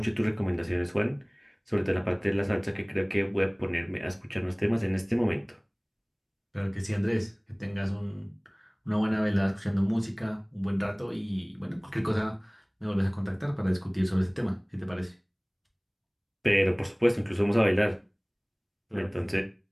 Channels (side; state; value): both; identical; correlation 1.00